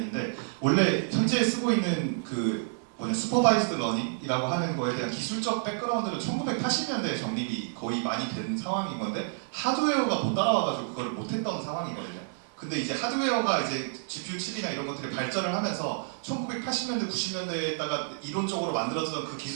원래 현재 쓰고 있는 그 슈퍼바이스드 러닝이라고 하는 거에 대한 기술적 백그라운드는 1980년대에 정립이 거의 많이 된 상황인 건데, 하드웨어가 못 따라와가지고 그걸 못했던 상황이거든요. 근데 이제 하드웨어가 이제 GPU 칩이나 이런 것들이 발전을 하면서 1980년대, 90년대에다가 이론적으로 만들어지던 그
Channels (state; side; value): silent; left; 58 dB below the other